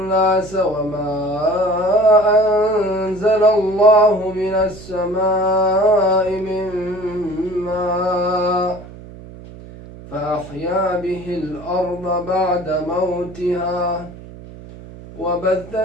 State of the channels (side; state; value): right; noise; hum, 16 dB below the sound